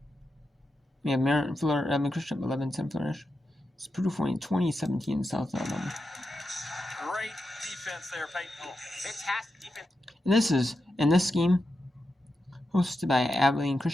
We have Merritt, Florida Avenue Christian, 11-10 Florida National. It's Purdue for me, 2017 South Alabama. Great defense there, Peyton. Oh, fantastic defense. And this is, in this game, hosted by Abilene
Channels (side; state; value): both; normal; correlation 0.88